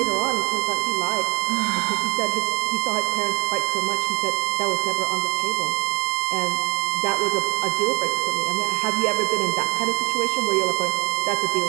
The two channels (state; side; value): quieter; left; 27.7 dB